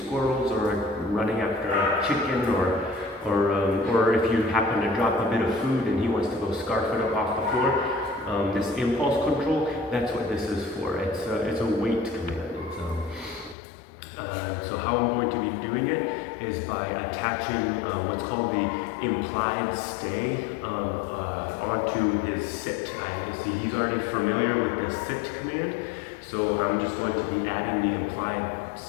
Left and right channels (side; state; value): right; drops out; at 13.6 s